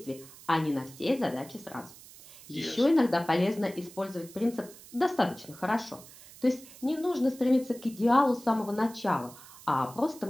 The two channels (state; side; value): noise; right; hiss, 19 dB below the sound